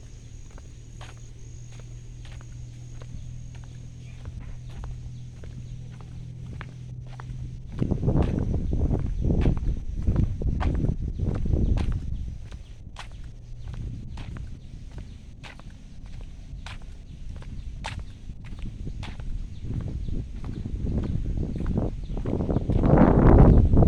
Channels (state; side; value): identical; both; correlation 1.00